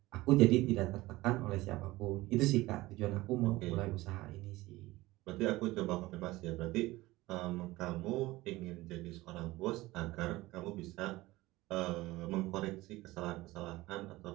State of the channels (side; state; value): left; quieter; 19.1 dB